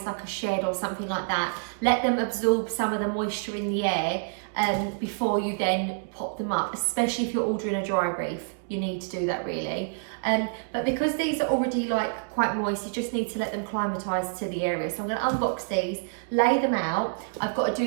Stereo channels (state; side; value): silent; left; digital silence